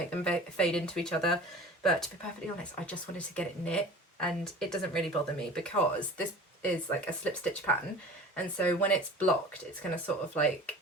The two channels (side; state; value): both; normal; correlation 0.40